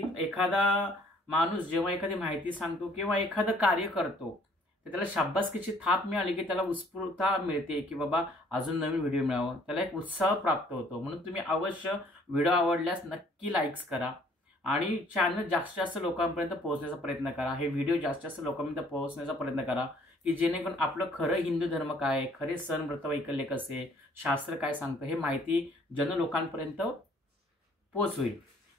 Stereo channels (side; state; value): both; normal; correlation 0.59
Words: एखादा माणूस जेव्हा एखादी माहिती सांगतो किंवा एखादं कार्य करतो तर त्याला शाबासकीची थाप मिळाली की त्याला उत्स्फूर्तता मिळते की बाबा अजून नवीन व्हिडिओ मिळावं, त्याला एक उत्साह प्राप्त होतो। म्हणून तुम्ही अवश्य व्हिडिओ आवडल्यास नक्की लाईक्स करा आणि चॅनल जास्तीत जास्त लोकांपर्यंत पोहोचण्याचा प्रयत्न करा। हे व्हिडिओ जास्तीत जास्त लोकांपर्यंत पोहोचण्याचा प्रयत्न करा की जेणेकरून आपलं खरं हिंदू धर्म काय आहे, खरे सण व्रत वैकल्य कसे, शास्त्र काय सांगतं हे माहिती जन लोकांपर्यंत पोहोचवेल।